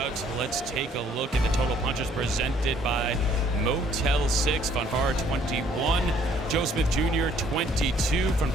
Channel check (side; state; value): both; normal; correlation 0.62